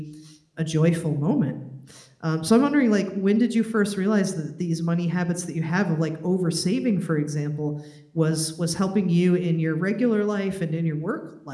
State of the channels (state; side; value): identical; both; correlation 1.00